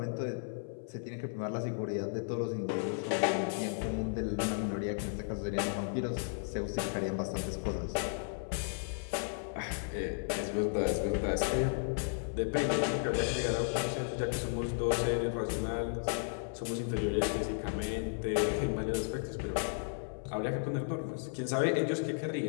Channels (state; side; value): silent; right; 55 dB below the other